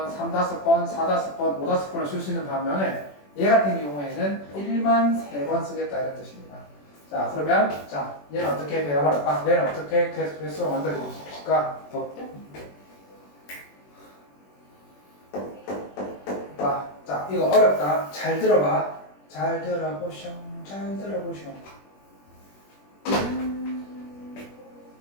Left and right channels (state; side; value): late; right; 21 ms